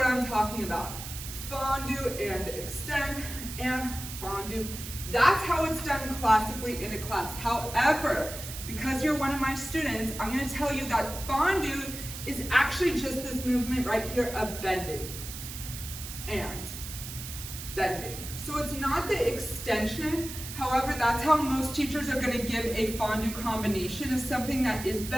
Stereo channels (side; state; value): right; noise; hiss, 9 dB below the sound